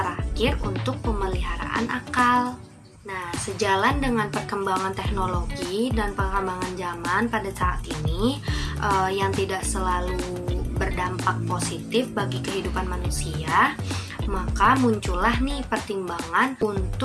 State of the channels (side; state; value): both; identical; correlation 1.00